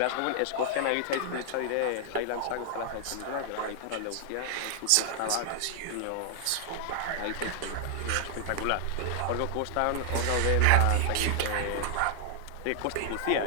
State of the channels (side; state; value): both; different; correlation 0.00